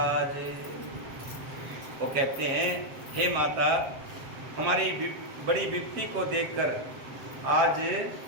वो कहते हैं, हे माता, हमारी बड़ी विपत्ति को देखकर आज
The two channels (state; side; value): late; left; 7.6 ms